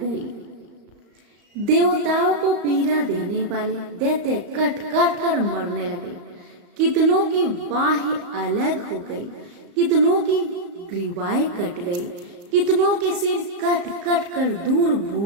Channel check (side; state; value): left; late; 34 ms